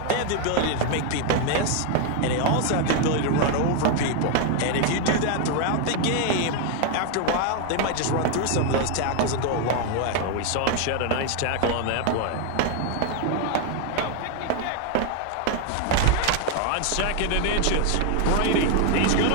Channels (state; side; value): different; both; correlation 0.01